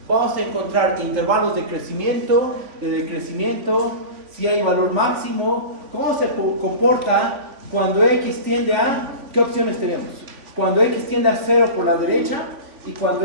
Vamos a encontrar intervalos de crecimiento, de decrecimiento, si hay valor máximo, cómo se comporta cuando x tiende a, ¿qué opciones tenemos? Cuando x tiende a 0 por la derecha y cuando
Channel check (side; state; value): left; late; 3.5 ms